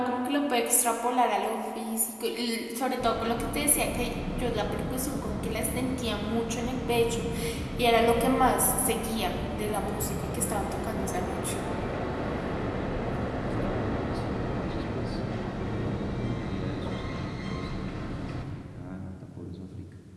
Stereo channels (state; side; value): identical; both; correlation 1.00